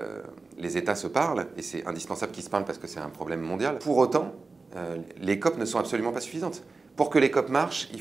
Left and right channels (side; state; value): left; quieter; 3.9 dB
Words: États se parlent, et c'est indispensable qu'ils se parlent parce que c'est un problème mondial. Pour autant, les COP ne sont absolument pas suffisantes. Pour que les COP marchent, il